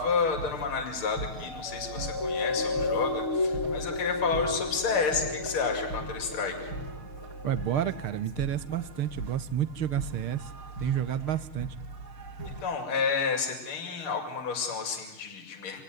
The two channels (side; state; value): right; late; 6.6 ms